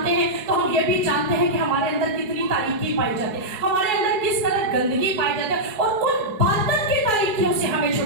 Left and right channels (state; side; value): late; left; 4.7 ms